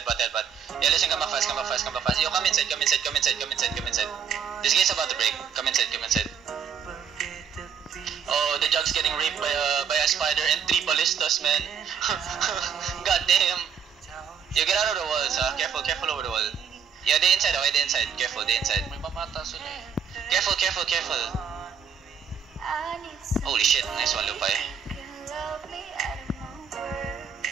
listen, come back fast. Yo, come inside. This gate's about to break, come inside. Oh, the jug's getting raped by a spider and 3 ballistas, man. God damn. Yo, get out of the walls, careful over the wall. Yeah, they inside. Careful, they inside. May mamata sila eh. Careful. Holy shit, nice one, Lupay.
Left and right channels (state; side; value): quieter; left; 7.4 dB